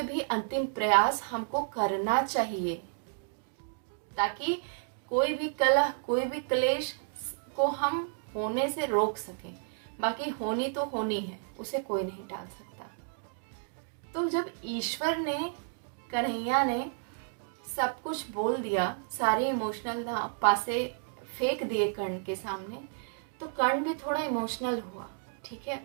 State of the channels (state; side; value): silent; left; digital silence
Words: भी अंतिम प्रयास हमको करना चाहिए, ताकि कोई भी कलह, कोई भी क्लेश को हम होने से रोक सकें। बाकी होनी तो होनी है, उसे कोई नहीं टाल सकता। तो जब ईश्वर ने, कन्हैया ने सब कुछ बोल दिया, सारे इमोशनल पासे फेंक दिए कर्ण के सामने, तो कर्ण भी थोड़ा इमोशनल हुआ। ठीक है,